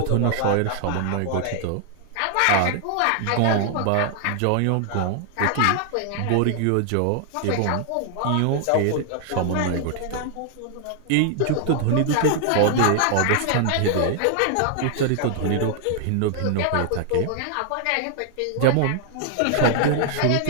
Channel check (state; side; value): different; both; correlation 0.00